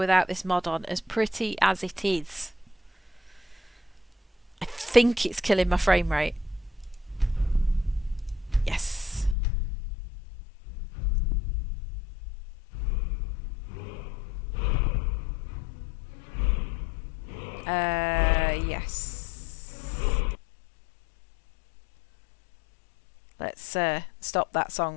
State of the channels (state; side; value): drops out; right; at 9.3 s